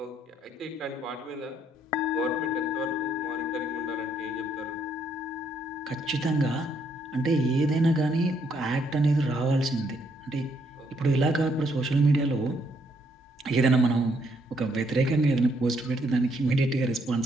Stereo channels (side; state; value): both; normal; correlation 0.71